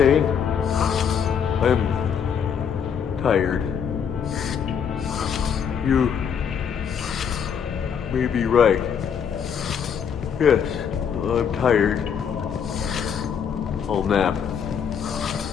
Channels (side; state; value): right; quieter; 7.5 dB